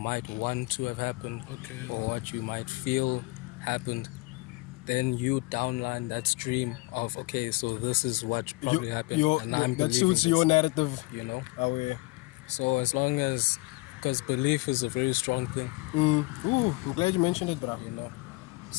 want to have happened, Okay. or what you might feel happened. Then you downline that stream of okay, so this is what probably happened, and I'm that believing suits your this, narrative. you know. Oh yeah. So as long as, because belief is a very strong thing, Ooh, I'm glad you mentioned it, bro. you know.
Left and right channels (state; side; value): quieter; right; 24.5 dB